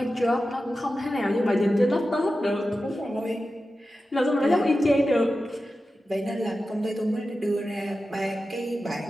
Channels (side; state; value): both; normal; correlation 0.93